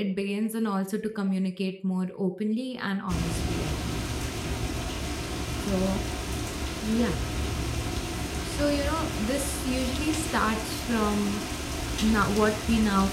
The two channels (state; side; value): identical; both; correlation 1.00